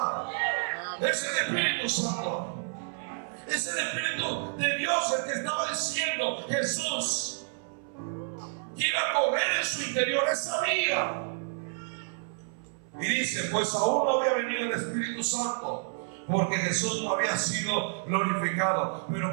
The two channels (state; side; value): silent; left; 58 dB below the other